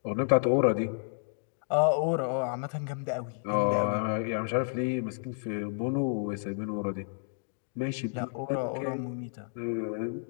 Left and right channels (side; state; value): right; silent; digital silence